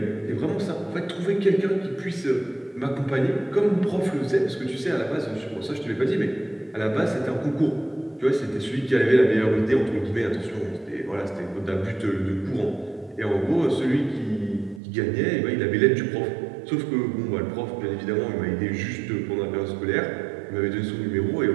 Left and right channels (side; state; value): left; drops out; at 14.8 s